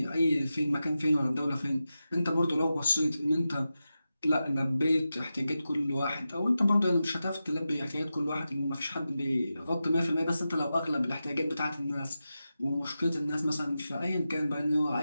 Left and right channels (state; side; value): inverted; both; correlation -0.92